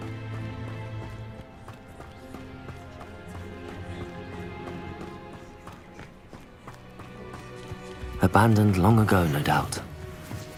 Abandoned long ago, no doubt.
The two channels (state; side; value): identical; both; correlation 1.00